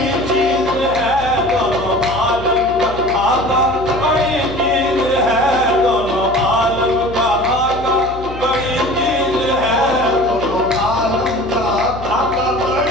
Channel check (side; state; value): left; noise; hum, 13 dB below the sound